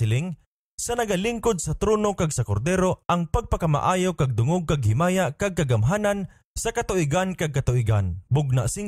sa nagalingkod sa trono kag sa kordero ang pagpakamaayo kag dungog kag himaya kag kagamhanan sa katuigan kag katuigan. Bugna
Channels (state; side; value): identical; both; correlation 1.00